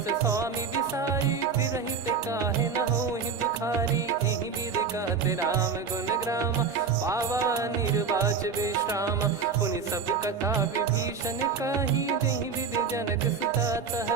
स्वामी बिसारी, फिरहि ते काहे न होहि दुखारी। एहि विधि कहते राम गुण ग्राम, पावा निर्वाच विश्राम। पुनि सब कथा विभीषण काही, जहि विधि जनक सुता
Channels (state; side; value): quieter; left; 5.7 dB